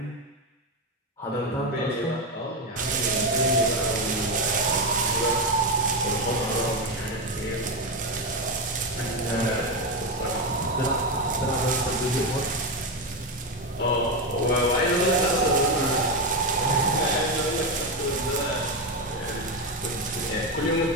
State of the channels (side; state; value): both; normal; correlation 0.11